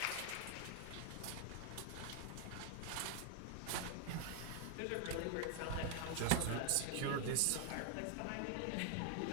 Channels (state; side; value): different; both; correlation 0.00